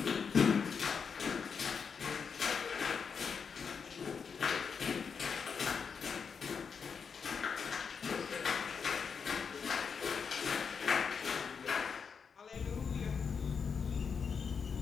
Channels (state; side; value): quieter; right; 6.1 dB